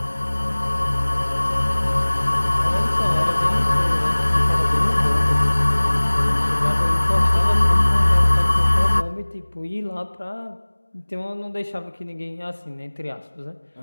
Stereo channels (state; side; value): inverted; both; correlation -1.00